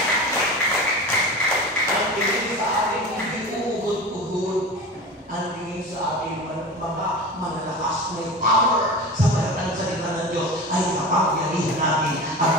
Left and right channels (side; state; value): both; normal; correlation 0.31